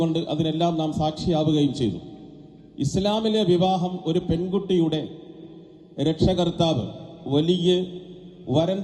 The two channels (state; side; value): identical; both; correlation 1.00